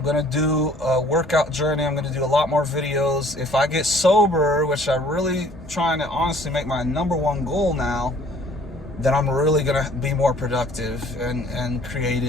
to do a workout journey. I'm going to do a lot more videos. If I get sober, which I'm really trying to honestly make my #1 goal now, then I'm really going to be more productive and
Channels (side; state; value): both; normal; correlation 0.55